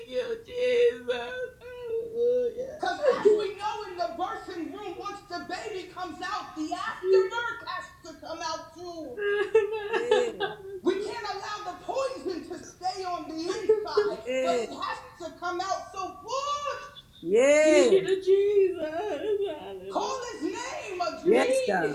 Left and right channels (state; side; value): identical; both; correlation 1.00